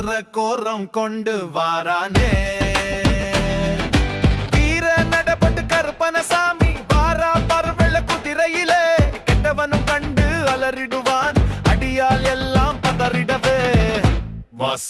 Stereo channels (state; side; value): identical; both; correlation 1.00